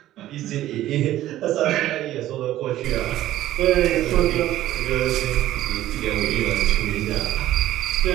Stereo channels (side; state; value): left; quieter; 13.9 dB